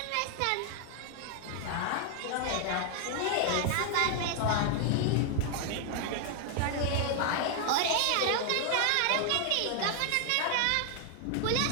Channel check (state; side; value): different; both; correlation 0.00